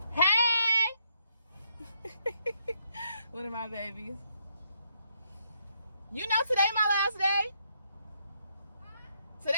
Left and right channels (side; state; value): both; inverted; correlation -0.75